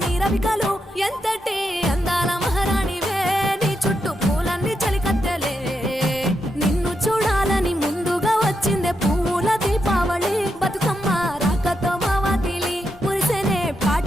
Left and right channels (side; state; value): both; normal; correlation 0.84